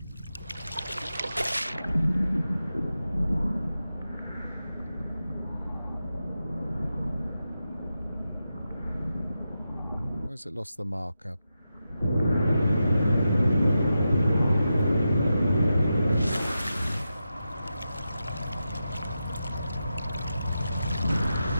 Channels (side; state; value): both; inverted; correlation -0.90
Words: Where's it lost the marker?